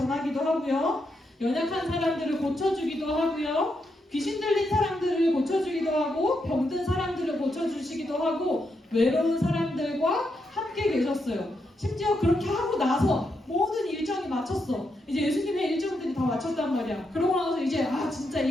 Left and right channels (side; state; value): both; normal; correlation 0.82